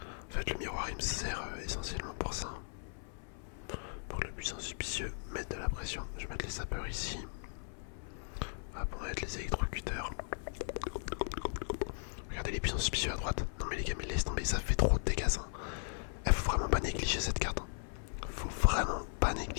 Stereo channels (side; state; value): right; silent; 53 dB below the other